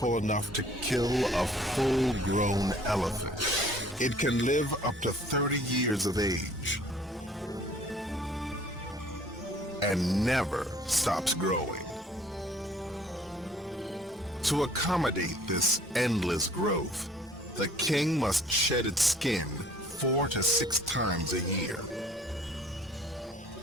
enough to kill a full-grown elephant. It can live up to 30 years of age and never stops growing. To accommodate this endless growth, the king must shed its skin 4 to 6 times a year.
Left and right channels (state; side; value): normal; both; correlation 0.55